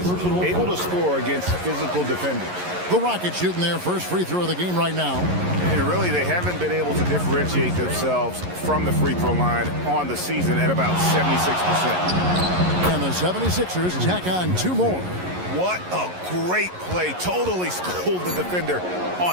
able to score against physical defenders. The Rockets shooting their first free throw of the game right now. And really, they haven't been able to differentiate themselves from the free throw line on the season at about 76%. And the 76ers tack on 2 more. What a great play. Totally schooled the defender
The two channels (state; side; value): late; left; 11 ms